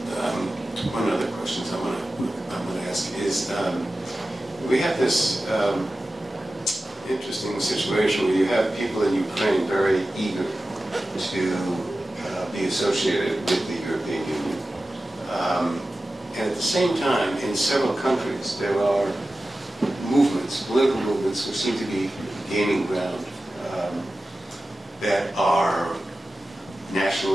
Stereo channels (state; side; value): normal; both; correlation 0.94